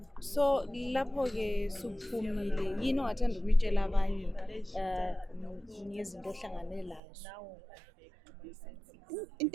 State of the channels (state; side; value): drops out; left; at 7.0 s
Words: So lapho ke suphumile yini ongathanda ukutshela abanye ngezinto ohlangane lazo?